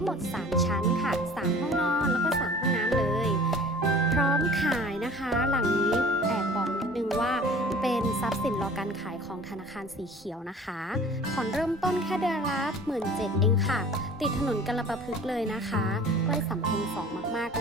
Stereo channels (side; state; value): both; normal; correlation 0.46